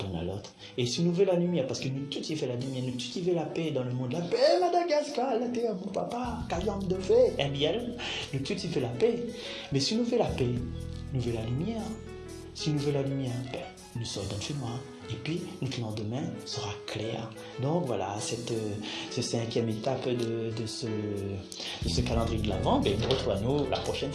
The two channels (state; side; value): identical; both; correlation 1.00